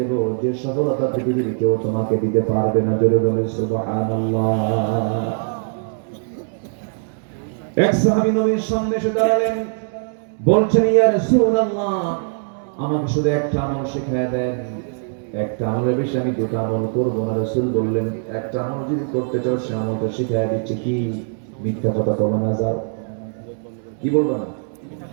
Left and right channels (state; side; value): silent; left; digital silence